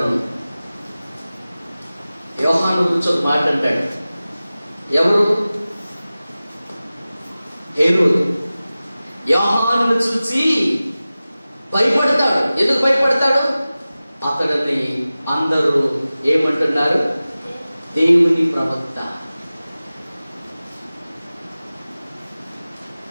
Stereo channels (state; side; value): inverted; both; correlation -0.97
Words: యోహాను గురించి ఒక మాట అంటాడు. ఎవరు? హేరోదు యోహానును చూసి భయపడతాడు. ఎందుకు భయపడతాడు? అతడిని అందరూ ఏమంటున్నారు? దేవుని ప్రవక్త.